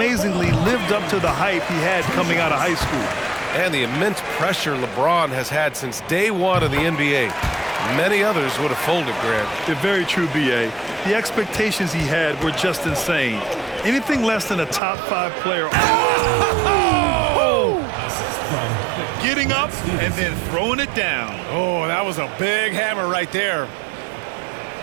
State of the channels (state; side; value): drops out; left; at 14.8 s